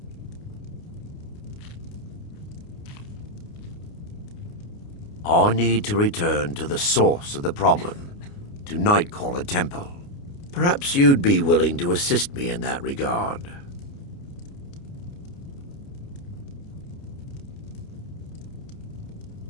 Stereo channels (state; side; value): late; right; 29 ms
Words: I need to return to the source of the problem, to Nightcaller Temple. Perhaps you'd be willing to assist me in that regard.